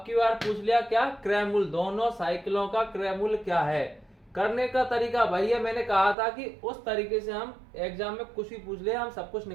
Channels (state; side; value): drops out; left; at 6.2 s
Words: की बार पूछ लिया क्या, क्रय मूल्य। दोनों साइकिलों का क्रय मूल्य क्या है। करने का तरीका वही है, मैंने कहा था कि उस तरीके से हम एग्जाम में कुछ भी पूछ ले हम सब कुछ